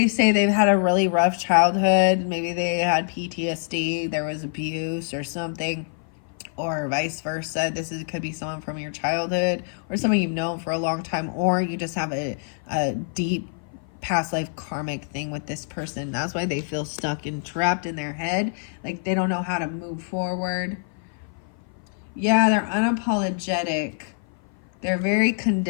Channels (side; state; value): right; silent; 55 dB below the other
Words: say they've had a really rough childhood. Maybe they had PTSD. There was abuse or something. Or vice versa. Could be someone from your childhood, or someone you've known for a long time, or you just have a deep past life karmic thing with this person. That's why they feel stuck and trapped in their head. Like they don't know how to move forward. Yeah, they're unapologetic. They're very